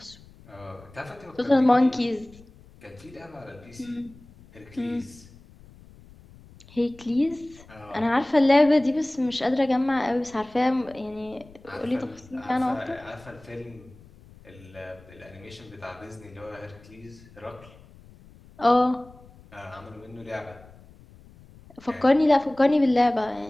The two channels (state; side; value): noise; left; rumble, 23 dB below the sound